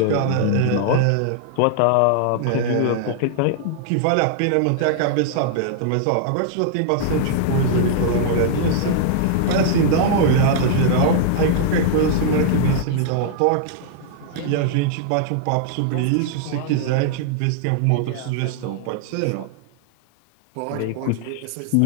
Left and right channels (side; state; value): both; different; correlation -0.01